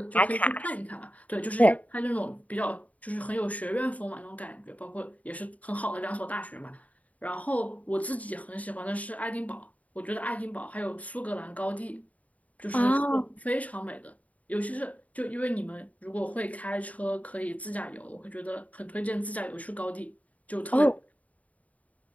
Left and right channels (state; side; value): late; right; 0.070 ms